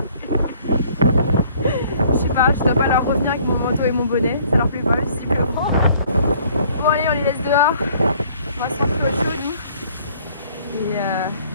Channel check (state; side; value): inverted; both; correlation -0.58